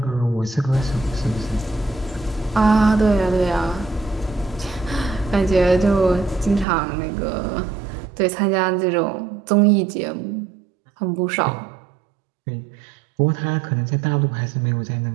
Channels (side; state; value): left; drops out; at 6.7 s